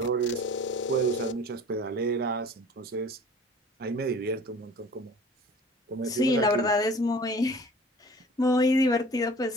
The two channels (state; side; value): normal; both; correlation 0.46